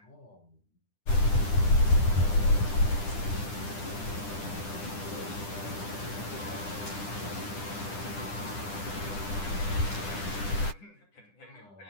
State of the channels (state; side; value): late; right; 10 ms